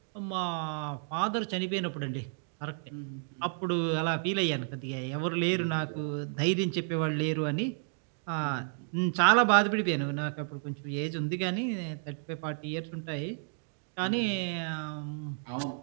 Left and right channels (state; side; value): silent; left; digital silence